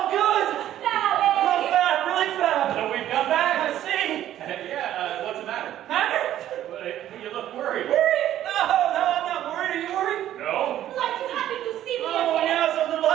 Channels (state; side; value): quieter; left; 12.3 dB